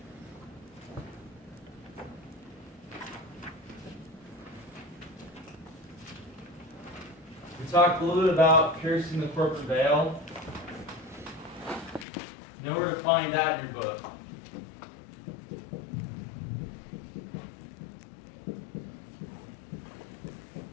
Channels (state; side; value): drops out; right; at 12.1 s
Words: We talked a little bit about piercing the corporate veil. You know where to find that in your book.